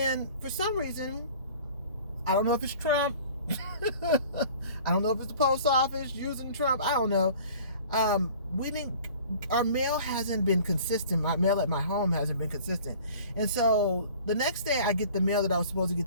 for some reason, I don't know if it's Trump. I don't know if it's the post office using Trump. I don't know. Our mail hasn't been consistent. My mail at my home hasn't been consistent. And so the next day I get the mail that I was supposed to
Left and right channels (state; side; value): inverted; both; correlation -0.47